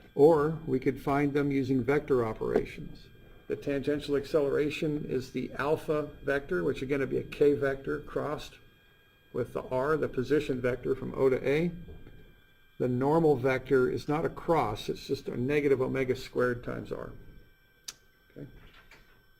or we could find them using vector operations. The tangential acceleration is the alpha vector, which again would be a k vector crossed with the r, the position vector from O to A. The normal vector is not a cross, it's just a negative omega squared times r. Okay.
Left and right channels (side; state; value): both; identical; correlation 1.00